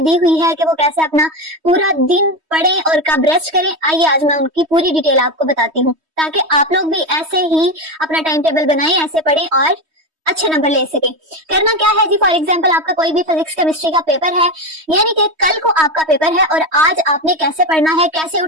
हुई है कि वो कैसे अपना पूरा दिन पढ़ें और कब रेस्ट करें। आइए आज मैं उनकी पूरी डिटेल आपको बताती हूँ, ताकि आप लोग भी ऐसे ही अपना टाइम टेबल बनाएं, ऐसे पढ़ें और अच्छे नंबर ले सके। करना क्या है जी, फॉर एग्जाम्पल आपका कोई भी फिजिक्स केमिस्ट्री का पेपर है, यानी कि कल को आपका पेपर है और आज आपने कैसे पढ़ना है, कैसे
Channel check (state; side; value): late; left; 3.2 ms